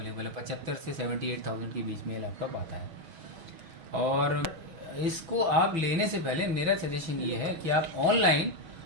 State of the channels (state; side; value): late; left; 6.1 ms